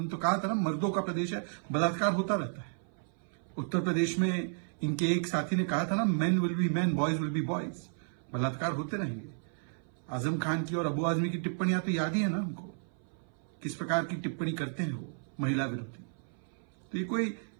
तो कहा था ना, मर्दों का प्रदेश है, बलात्कार होता रहता है। उत्तर प्रदेश में इनके एक साथी ने कहा था ना, men will be main, boys will be boys, बलात्कार होते रहेंगे। आजम खान की और अबू आजमी की टिप्पणियां तो याद ही है ना हमको, किस प्रकार की टिप्पणी करते हैं वो महिला विरोधी। तो ये कोई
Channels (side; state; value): left; silent; 56 dB below the other